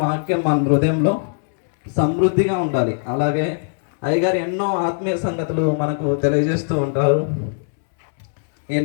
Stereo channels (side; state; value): right; silent; 65 dB below the other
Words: వాక్యం మన హృదయంలో సమృద్ధిగా ఉండాలి. అలాగే అయ్యగారు ఎన్నో ఆత్మీయ సంగతులు మనకు తెలియజేస్తూ ఉంటారు.